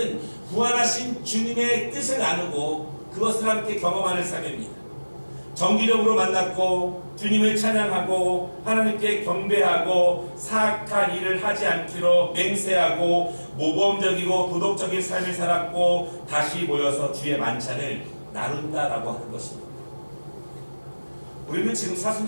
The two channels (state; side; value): inverted; both; correlation -1.00